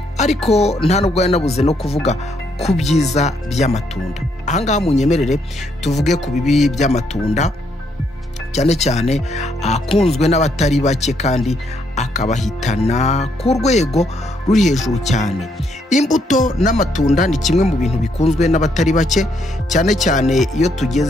ariko nta nubwo yanabuze no kuvuga ku byiza by'amatunda ahangaha munyemerere tuvuge ku bibi by'amatunda cyane cyane akunzwe n'abatari bake kandi akabahitana ku rwego ruri hejuru cyane imbuto n'amatunda ni kimwe mu bintu bikunzwe n'abatari bake cyane cyane iyo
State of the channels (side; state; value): both; normal; correlation 0.73